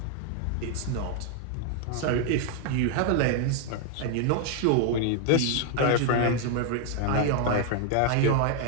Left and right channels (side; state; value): both; different; correlation 0.00